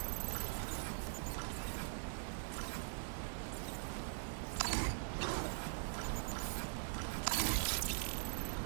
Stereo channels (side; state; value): left; silent; digital silence